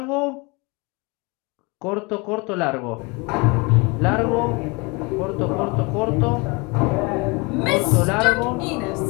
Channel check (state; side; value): quieter; right; 27.9 dB